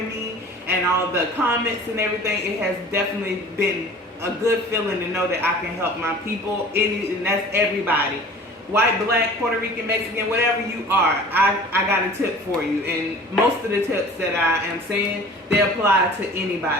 me and all the comments and everything. It has definitely been a good feeling to know that I can help my people, and that's everybody. White, black, Puerto Rican, Mexican, whatever you are, I got a tip for you. And most of the tips that I am saying, they apply to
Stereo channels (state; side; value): normal; both; correlation 0.44